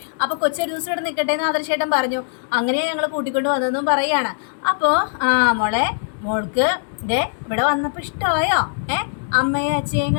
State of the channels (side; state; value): right; silent; digital silence